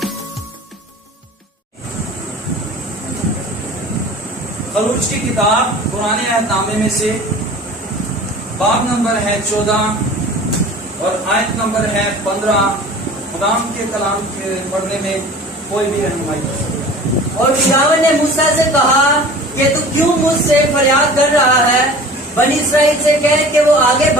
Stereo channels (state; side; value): normal; both; correlation 0.42